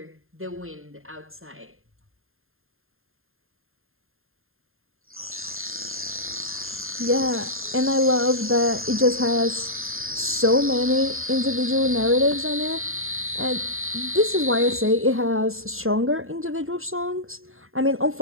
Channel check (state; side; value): late; left; 0.61 ms